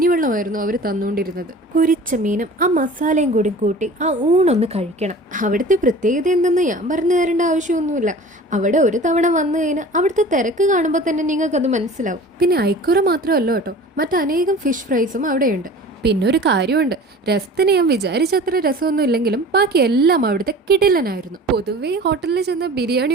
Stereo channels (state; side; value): normal; both; correlation 0.41